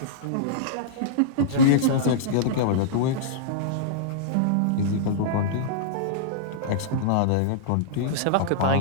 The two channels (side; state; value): both; different; correlation -0.02